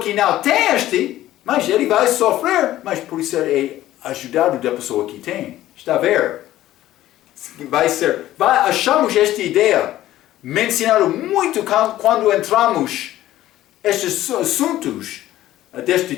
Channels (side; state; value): right; quieter; 14.3 dB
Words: não tem este, mas ele vai sofrer, mas por isso é ajudado da pessoa que tem. Está a ver? Achamos esta ideia mencionada muito quando entramos estes assuntos deste